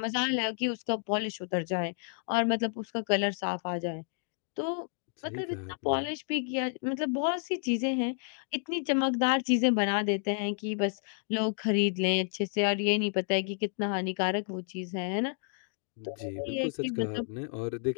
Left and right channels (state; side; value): silent; right; 57 dB below the other